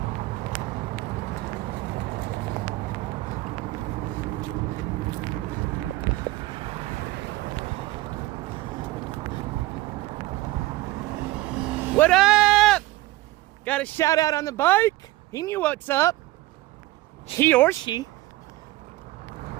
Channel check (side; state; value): left; quieter; 18.1 dB